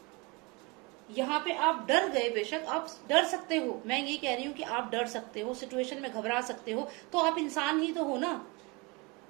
यहाँ पे आप डर गए, बेशक आप डर सकते हो, मैं ये कह रही हूँ कि आप डर सकते हो, सिचुएशन में घबरा सकते हो, तो आप इंसान ही तो हो ना,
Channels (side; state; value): left; quieter; 27.3 dB